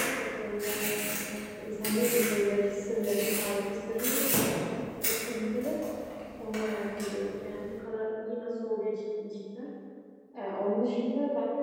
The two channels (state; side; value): identical; both; correlation 1.00